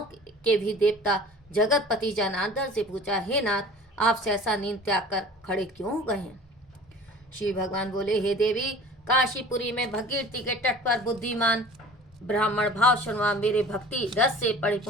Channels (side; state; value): both; normal; correlation 0.44